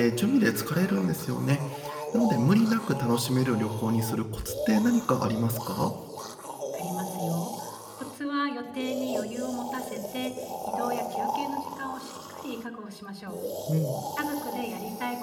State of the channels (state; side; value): identical; both; correlation 1.00